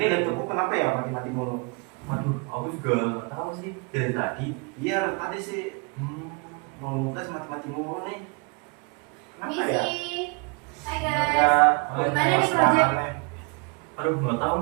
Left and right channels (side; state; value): left; quieter; 31.1 dB